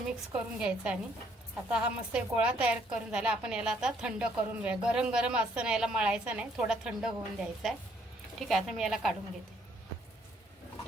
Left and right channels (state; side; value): normal; both; correlation 0.67